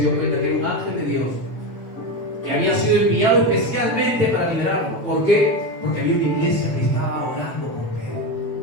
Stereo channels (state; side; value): normal; both; correlation 0.18